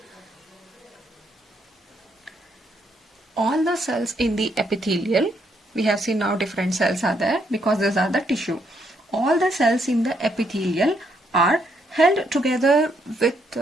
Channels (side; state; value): both; normal; correlation 0.74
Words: All the cells in the epithelial, we have seen now different cells are there because these are the tissue. All the cells in the epithelial are held together with